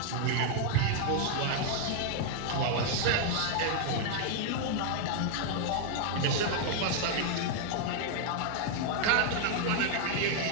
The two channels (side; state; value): both; different; correlation 0.00